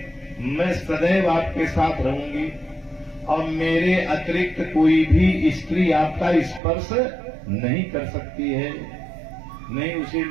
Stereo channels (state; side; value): drops out; left; at 6.6 s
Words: मैं सदैव आपके साथ रहूंगी और मेरे अतिरिक्त कोई भी स्त्री आपका स्पर्श नहीं कर सकती है, नहीं उसे